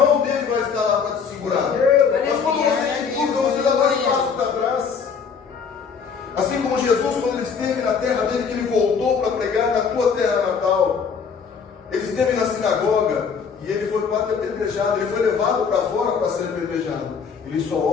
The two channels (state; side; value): quieter; right; 6.1 dB